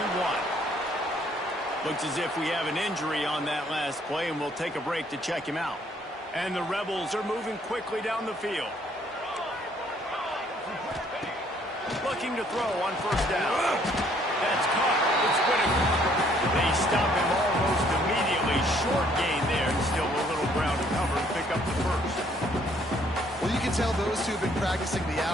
Looks as if we have an injury on that last play, and we'll take a break to check him out. And the Rebels are moving quickly down the field. Looking to throw on first down. That's caught. It's Whitaker. They stop him almost immediately. Short gain there. Still a little ground to cover and pick up the first. Well, you can tell those two have been practicing the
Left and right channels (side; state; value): both; normal; correlation 0.64